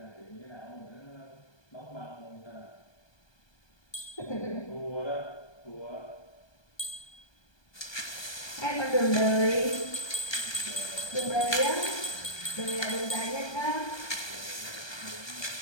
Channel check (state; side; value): late; right; 1.2 ms